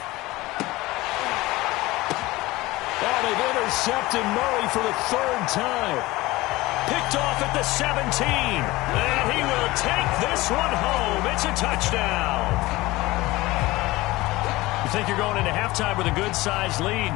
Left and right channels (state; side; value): quieter; right; 19.7 dB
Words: Oh, they've intercepted Murray for the 3rd time. Picked off at the 17. And he will take this one home. It's a touchdown. think you're going into halftime with a good-sized lead.